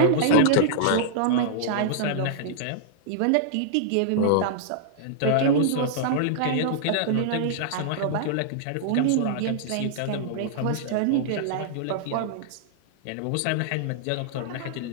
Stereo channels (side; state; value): both; different; correlation -0.01